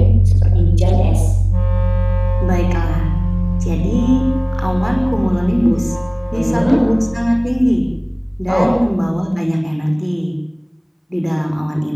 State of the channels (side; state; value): both; identical; correlation 1.00